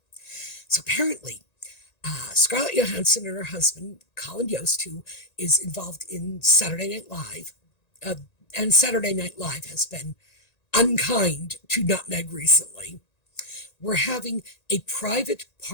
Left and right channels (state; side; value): late; right; 1.9 ms